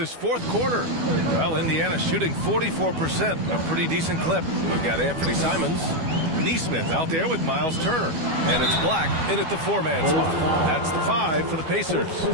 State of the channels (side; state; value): left; late; 12 ms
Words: fourth quarter. Well, Indiana shooting 44%, a pretty decent clip. We've got Anthony Simons, Neesmith out there with Miles Turner. And it's Black in at the 4-man spot. That's the 5 for the Pacers.